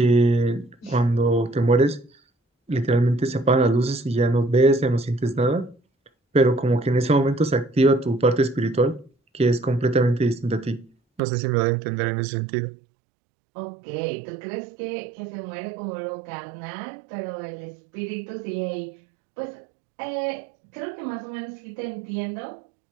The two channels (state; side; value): drops out; left; at 11.2 s